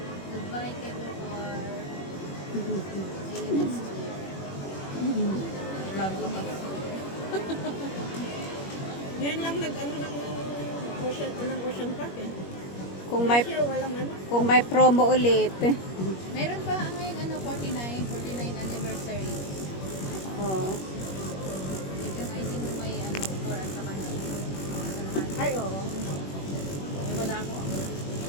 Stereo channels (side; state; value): right; late; 21 ms